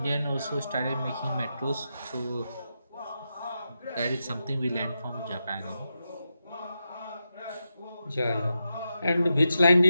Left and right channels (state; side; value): inverted; both; correlation -0.88